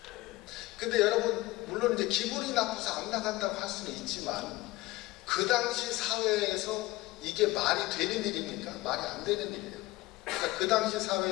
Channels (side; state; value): right; quieter; 19.6 dB